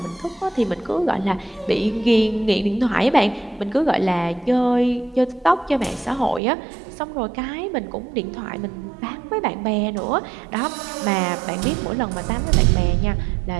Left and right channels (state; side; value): drops out; left; at 6.4 s